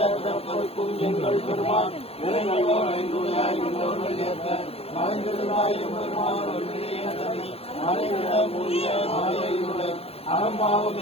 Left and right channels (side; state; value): right; late; 0.29 ms